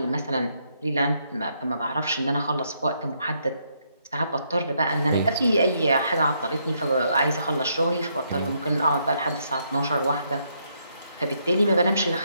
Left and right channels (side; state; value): both; inverted; correlation -0.75